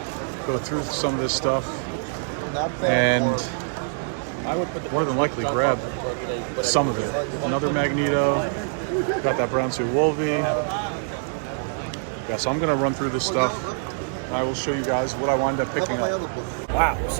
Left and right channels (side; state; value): left; silent; digital silence